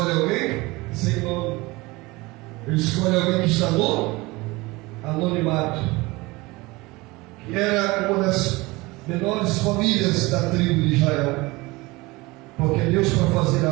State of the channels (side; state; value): left; quieter; 22.5 dB